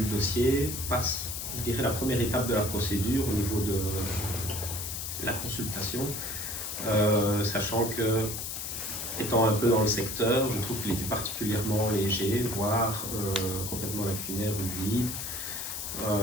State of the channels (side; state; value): left; noise; hiss, 5 dB below the sound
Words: dossier passe, je dirais, la première étape de la procédure au niveau de la consultation, sachant que, étant un peu dans le secteur, je trouve qu'il était particulièrement léger, voire complètement lacunaire ou vide.